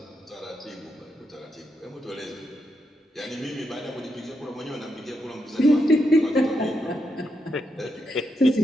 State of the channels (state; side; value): normal; both; correlation 0.82